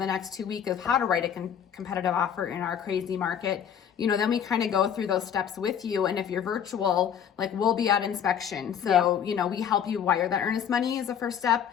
the next 2 weeks of how to write a competitive offer in our crazy market. Then we kind of go through those steps with you. And if you're virtual, like we'll be at inspection. So, we help you wire that earnest money as the first step.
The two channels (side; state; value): right; quieter; 8.5 dB